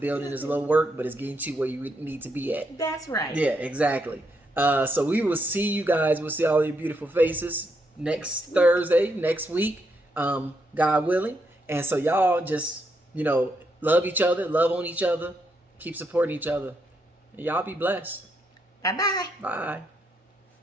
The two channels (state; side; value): normal; both; correlation 0.78